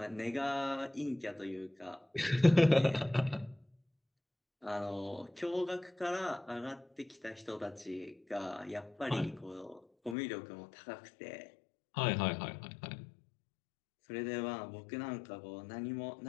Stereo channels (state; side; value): drops out; right; at 10.2 s